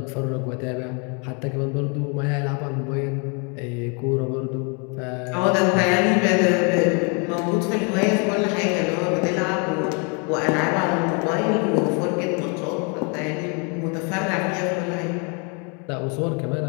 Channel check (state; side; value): quieter; right; 34.9 dB